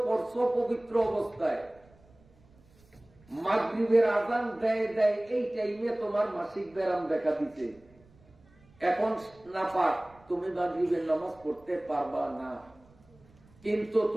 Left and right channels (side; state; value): right; noise; rumble, 28 dB below the sound